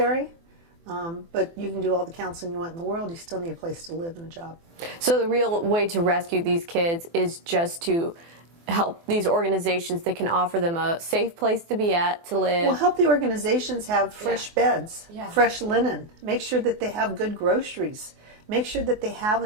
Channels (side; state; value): left; late; 24 ms